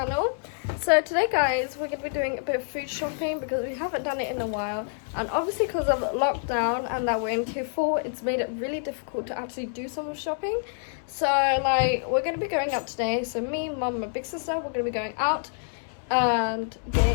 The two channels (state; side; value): silent; right; 60 dB below the other